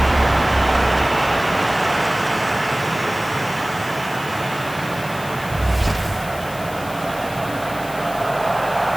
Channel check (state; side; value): noise; left; hiss, 16 dB below the sound